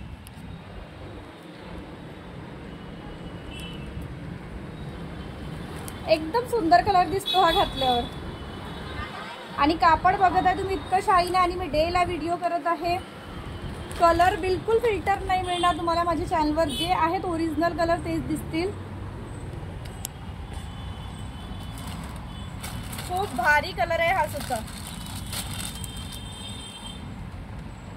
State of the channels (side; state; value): both; identical; correlation 1.00